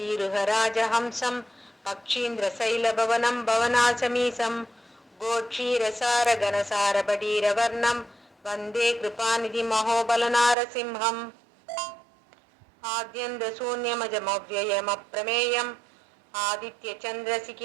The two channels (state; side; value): drops out; left; at 10.6 s